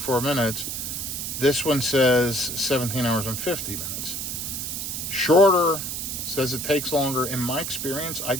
minutes. This one says 17 hours and 50 minutes. Shorter says it takes longer. In my experience, I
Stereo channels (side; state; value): right; noise; hiss, 4 dB below the sound